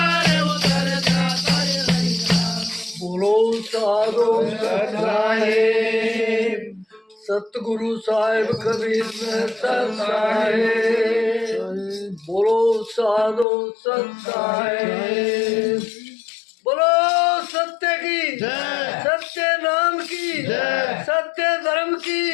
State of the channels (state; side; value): drops out; right; at 13.5 s